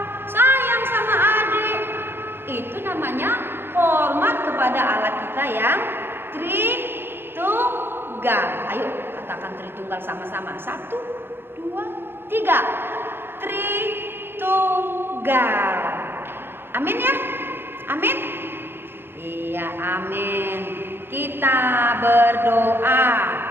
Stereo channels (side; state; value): left; late; 0.10 ms